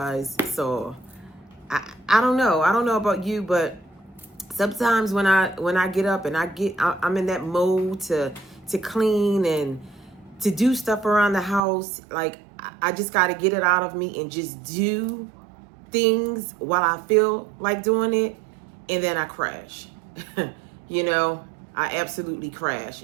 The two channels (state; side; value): drops out; left; at 11.6 s